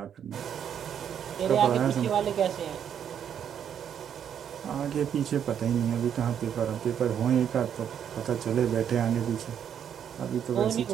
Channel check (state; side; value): quieter; left; 8.7 dB